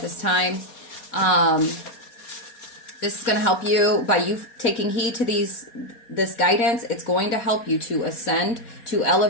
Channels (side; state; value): right; late; 4.2 ms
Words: this time. This is going to help you by you taking heed to this guidance. It's going to help you to ascend, to